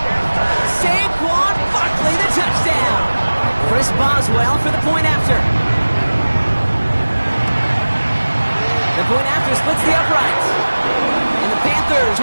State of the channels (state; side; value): inverted; both; correlation -1.00